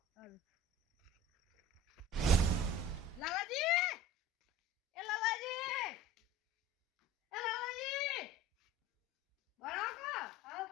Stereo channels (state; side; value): normal; both; correlation 0.41